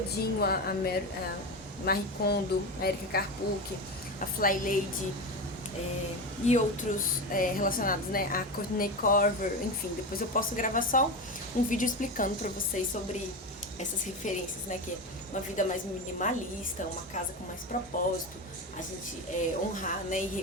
a Marie Kondo, a Erika Karpuk, a Fly Lady, e outros relacionados, né, a Courtney Corver, enfim, depois eu posso gravar só um vídeo explicando pra vocês sobre essas referências, né, que é uma vida mais minimalista, uma casa com mais propósito, a gente honrar, né, e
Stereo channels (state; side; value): normal; both; correlation 0.20